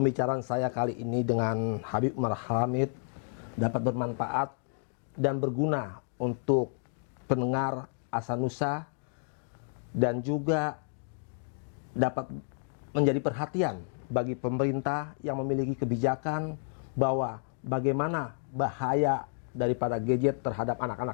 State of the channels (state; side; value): silent; right; digital silence